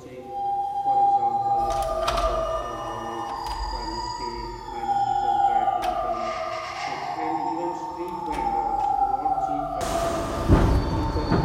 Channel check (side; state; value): both; identical; correlation 1.00